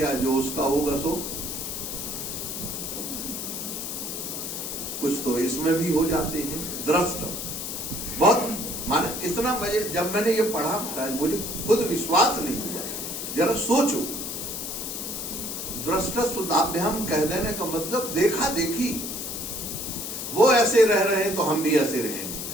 जो उसका होगा सो। कुछ तो इसमें भी हो जाते हैं। दृष्ट बहुत माने इतना मजे, जब मैंने ये पढ़ा महाराज मुझे खुद विश्वास नहीं हुआ। जरा सोचो, दृष्टश्रुताभ्याम कह देने का मतलब देखा देखी। वो ऐसे रह रहे हैं तो हम भी ऐसे रहेंगे,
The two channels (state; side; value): noise; left; hiss, 5 dB below the sound